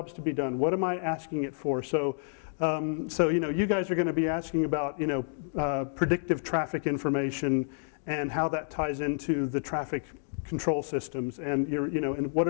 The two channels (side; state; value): right; silent; digital silence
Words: to be done? What am I asking it for? So you guys are going to be asking about, predictive traffic information and how that ties into the traffic control systems, and and what